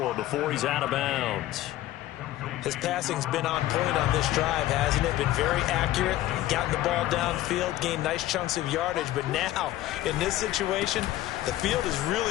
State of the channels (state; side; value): quieter; right; 14.9 dB